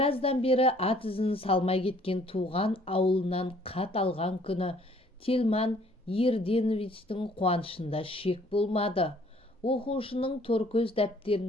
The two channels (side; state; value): both; normal; correlation 0.59